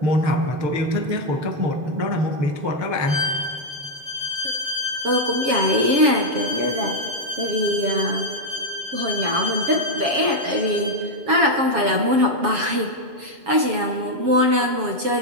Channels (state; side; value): late; left; 7.3 ms